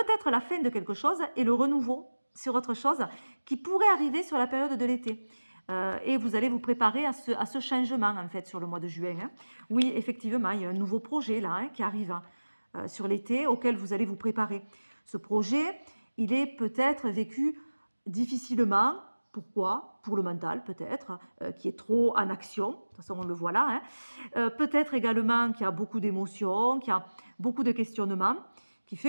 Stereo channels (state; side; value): inverted; both; correlation -1.00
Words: la fin de quelque chose et le renouveau sur autre chose qui pourrait arriver sur la période de l'été. Et vous allez vous préparer à ce changement, en fait, sur le mois de juin. Hein. Oui, effectivement, il y a un nouveau projet là, hein, qui arrive sur l'été auquel vous allez vous préparer. Ce projet, il est peut-être vécu difficilement. Pourquoi? Pour le mental, peut-être, qui est trop en action. De toute façon, on le voit là. Hein. Peut-être également qu'il y a beaucoup d'émotions, qu'il y a beaucoup de questionnements, qui